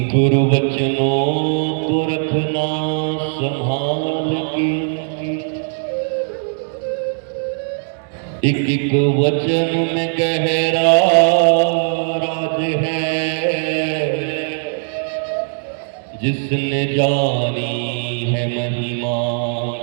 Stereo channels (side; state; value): left; silent; digital silence